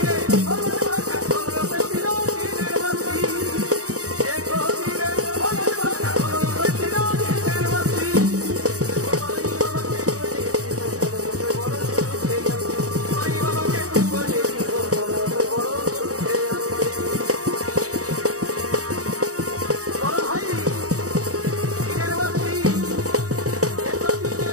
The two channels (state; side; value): late; left; 0.66 ms